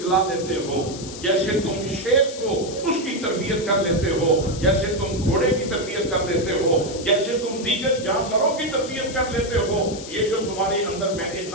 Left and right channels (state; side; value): noise; left; hiss, 12 dB below the sound